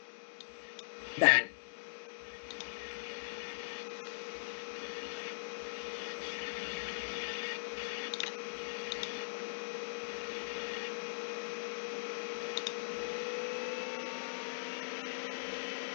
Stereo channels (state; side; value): silent; right; digital silence